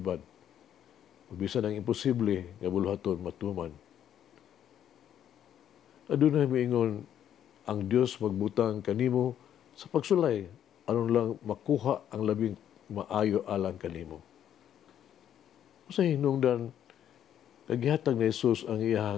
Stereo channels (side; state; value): right; quieter; 10.2 dB